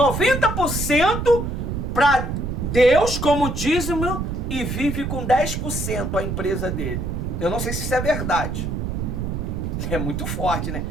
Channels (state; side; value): noise; right; rumble, 3 dB below the sound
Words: para Deus como dízimo e vive com 10% a empresa dele. Eu não sei se isso é verdade. É muito forte, né?